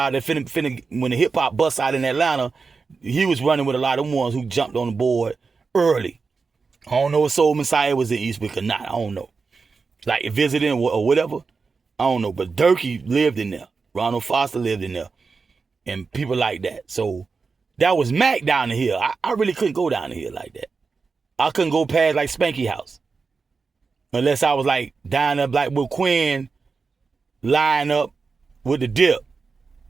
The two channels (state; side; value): quieter; left; 4.7 dB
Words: that when the hip hop bust out in Atlanta, he was running with a lot of them ones who jumped on the board early. I don't know if Soul Messiah was in Eastwick or not. I don't know. Like visiting or whatever. I don't know. But Durkee lived in there. Ronald Foster lived in there. And people like that. So that was Mac down the hill. I really couldn't go down the hill like that. I couldn't go past like Spanky House. Unless I was like down there like with Quinn lying up with the dip.